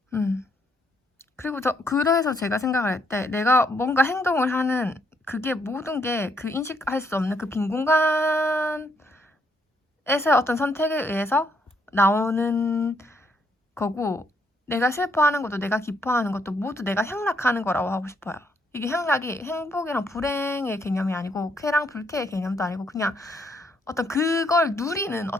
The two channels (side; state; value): both; normal; correlation 0.73